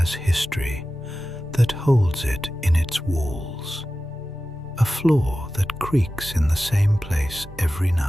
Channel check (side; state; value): both; normal; correlation 0.94